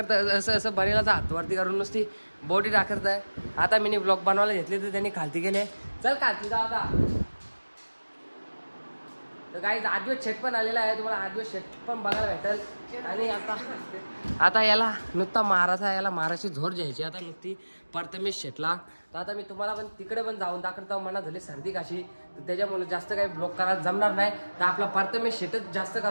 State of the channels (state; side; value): inverted; both; correlation -1.00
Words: असं असं बरेलाचा हातवरती करून नुसती बॉडी दाखवत आहे। आता मी ब्लॉग बनवायला घेतले तर त्यांनी खालती गेले, चल खालती जा आता। तर काही आदिवास शेट पण आलेला आहे, तुम्हाला आदिवास शेट पण बघायला भेटेल। आणि आता याला नुसता मारायचा, याला मारायची झोर द्यायची आता नुसती प्रथमेश शेटला। तर आता मी तुम्हाला पण तिकडे पण जाऊन दाखवतो, मना झाली सर्दी काशी, तर त्याच्यामुळे जास्त काही ब्लॉग करायला जमणार नाही। तर आपला प्रथमेश शेटच जास्त